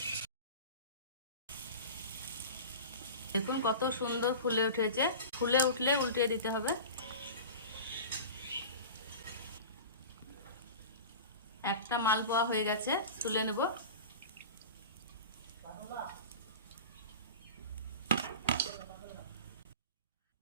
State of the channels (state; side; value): inverted; both; correlation -0.34